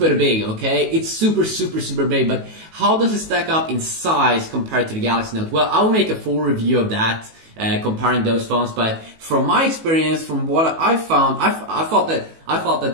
big, okay? It's super big, but how does it stack up in size compared to the Galaxy Note? Well, I'll make a full review of that, comparing those phones, but from my experience, from what I found, I thought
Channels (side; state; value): left; late; 19 ms